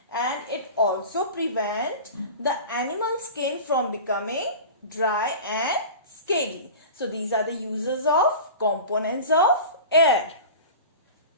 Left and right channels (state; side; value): inverted; both; correlation -0.34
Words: And it also prevents the animal skin from becoming dry and scaly. So these are the uses of components of air.